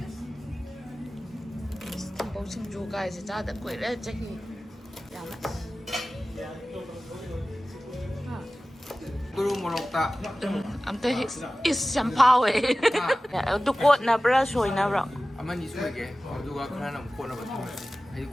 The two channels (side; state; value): both; normal; correlation 0.96